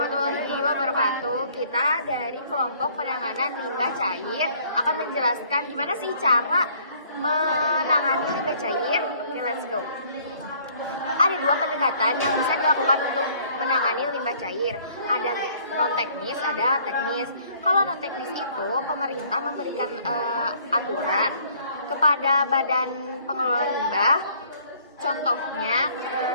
wabarakatuh. Kita dari kelompok penanganan limbah cair akan menjelaskan gimana sih cara menangani limbah cair. Oke, let's go. Ada 2 pendekatan yang bisa dilakukan untuk menangani limbah cair. Ada non teknis, ada teknis. Kalau non teknis itu pemerintah memberikan aturan kepada badan pengelola limbah. Contohnya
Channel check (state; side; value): inverted; both; correlation -0.60